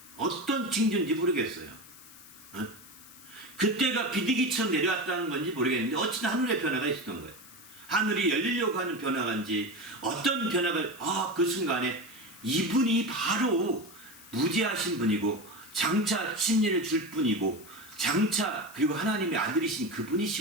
어떤 징조인지 모르겠어요. 그때가 비둘기처럼 내려왔다는 건지 모르겠는데 어쨌든 하늘의 변화가 있었던 거예요. 하늘이 열리려고 하는 변화인지 어떤 변화가, 그 순간에 이분이 바로 무지하신 분이고 장차 침례를 줄 분이고 장차 그리고 하나님의 아들이신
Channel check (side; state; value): left; noise; hiss, 20 dB below the sound